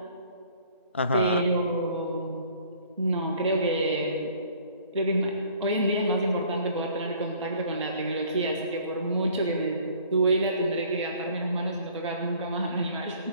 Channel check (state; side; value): inverted; both; correlation -0.55